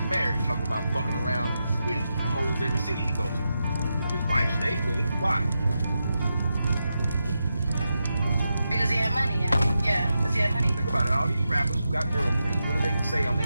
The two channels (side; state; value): both; inverted; correlation -0.88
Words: married, talking about fucking around with hoes every city he goes to. His wife stayed with him. Why? Because he had money, yeah. Because he had money. Think about it. All these rappers who got girlfriends, what do they say on